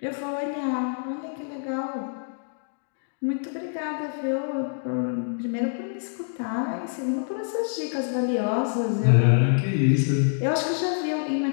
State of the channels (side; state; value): right; silent; digital silence